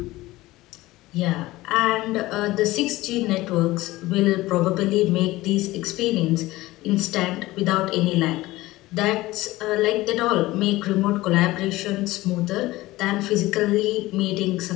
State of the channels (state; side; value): quieter; right; 18.3 dB